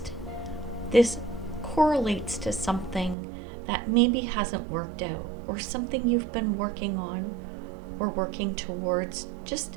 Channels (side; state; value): left; drops out; at 3.2 s